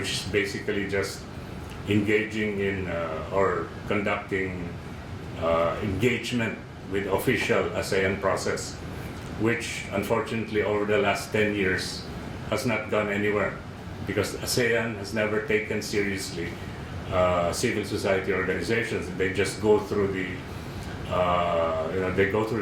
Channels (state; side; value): identical; both; correlation 1.00